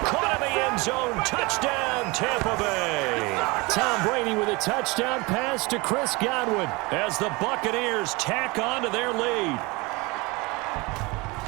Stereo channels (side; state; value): left; quieter; 25.3 dB